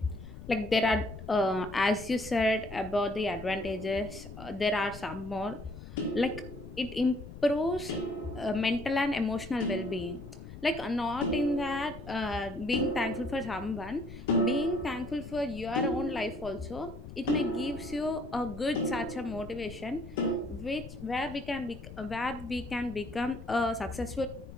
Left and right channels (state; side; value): noise; left; rumble, 13 dB below the sound